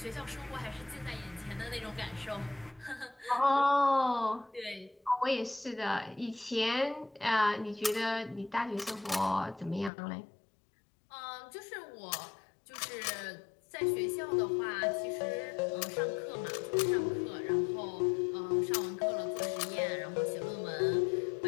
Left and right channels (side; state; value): right; drops out; at 9.9 s